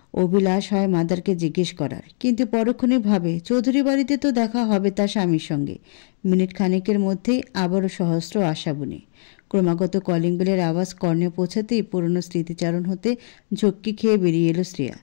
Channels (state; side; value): silent; right; digital silence